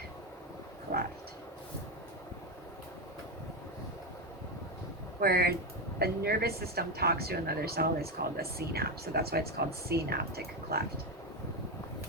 cleft, where a nervous system talks to another cell is called a synapse. So that's why it's called synaptic cleft.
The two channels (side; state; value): both; normal; correlation 0.11